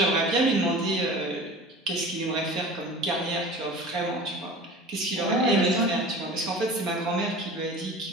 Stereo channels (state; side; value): normal; both; correlation 0.38